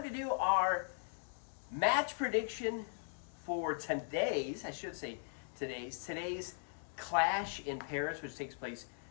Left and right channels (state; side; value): silent; right; digital silence